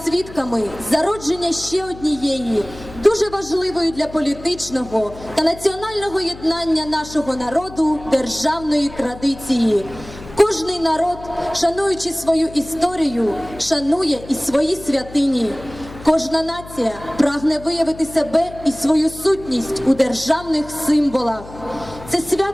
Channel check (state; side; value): noise; left; hum, 16 dB below the sound